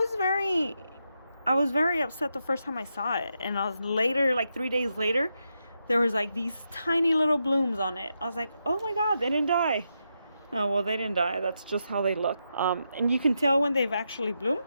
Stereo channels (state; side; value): inverted; both; correlation -0.84